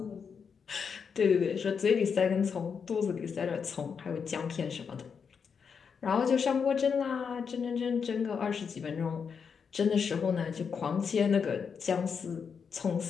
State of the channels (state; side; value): quieter; right; 6.3 dB